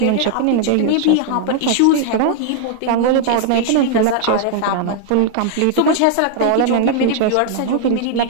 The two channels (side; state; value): both; different; correlation 0.00